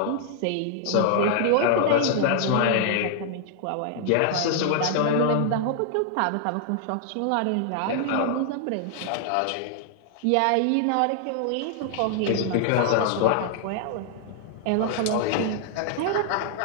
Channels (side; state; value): both; different; correlation 0.00